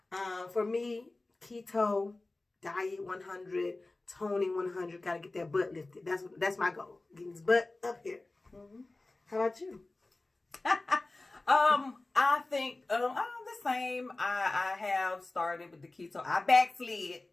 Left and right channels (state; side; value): quieter; right; 3.1 dB